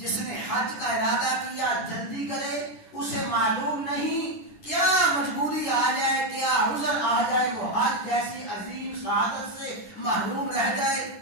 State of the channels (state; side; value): late; right; 10 ms